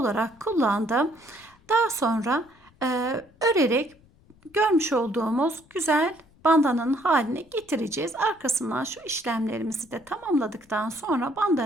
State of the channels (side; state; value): left; noise; rumble, 29 dB below the sound